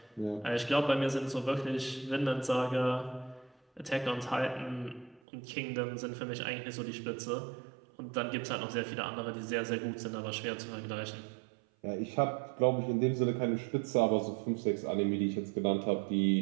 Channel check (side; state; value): left; drops out; at 5.2 s